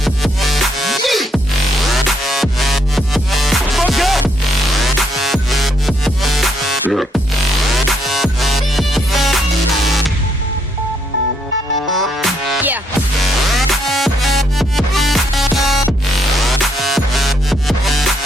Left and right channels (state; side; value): normal; both; correlation 0.73